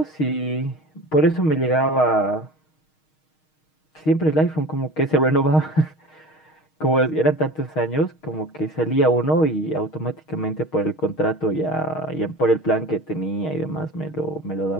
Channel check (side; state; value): right; late; 6.4 ms